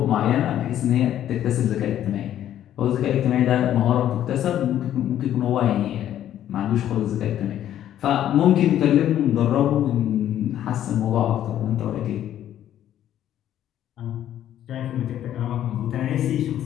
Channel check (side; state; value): right; quieter; 11.4 dB